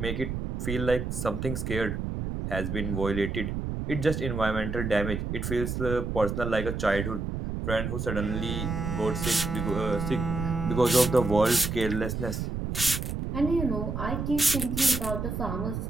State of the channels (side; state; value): right; noise; rumble, 3 dB below the sound